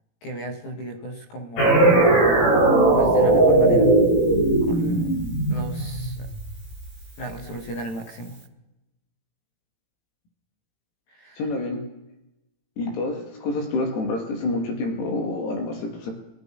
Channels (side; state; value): right; late; 18 ms